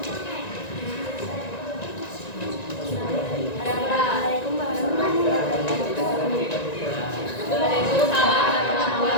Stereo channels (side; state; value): right; late; 1.9 ms